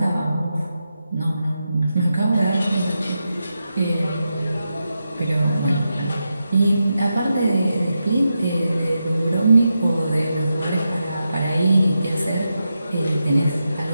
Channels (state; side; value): inverted; both; correlation -0.88